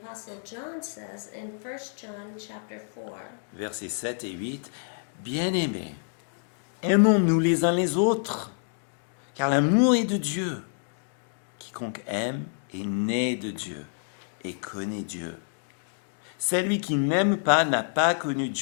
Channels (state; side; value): silent; right; digital silence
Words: John, says in 1 John chapter 4. Versets 7 et 8. Bien-aimés, aimons-nous les uns les autres, car l'amour est de Dieu. Quiconque aime est né de Dieu et connaît Dieu. Celui qui n'aime pas n'a pas connu